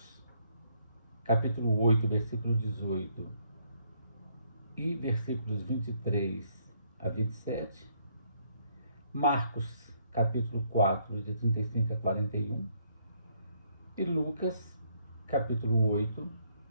capítulo 8, versículo 18 e versículos 23 a 27, Marcos, capítulo 4, de 35 a 41, e Lucas, capítulo 8,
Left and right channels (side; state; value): both; inverted; correlation -0.69